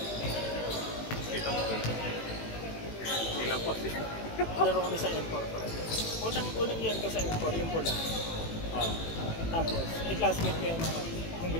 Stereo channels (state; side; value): late; right; 18 ms